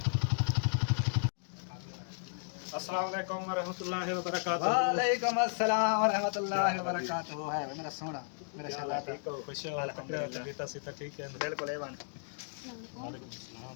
السلام علیکم ورحمۃ اللہ وبرکاتہ. وعلیکم السلام ورحمۃ اللہ وبرکاتہ. ہے میرا سونا میرا شہزادہ. ٹھیک ہو, خوش ہو, طبیعت سے ٹھیک ہے؟ بالکل ایوان. وعلیکم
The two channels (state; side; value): silent; right; digital silence